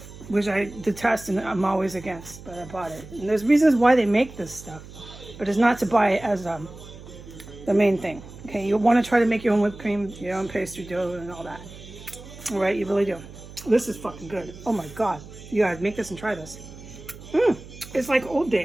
which I detest and I'm always against, but I bought it. And there's reasons why they make this stuff, but it's not to buy it as the main thing. Okay, you want to try to make your own whipped cream, your own pastry dough, and all that. All right, you really do. This is fucking good. Oh my God, you gotta make this and try this. It's like old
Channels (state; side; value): noise; right; hum, 17 dB below the sound